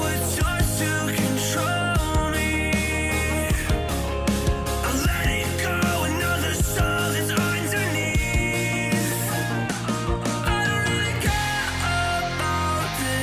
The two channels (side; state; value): both; identical; correlation 1.00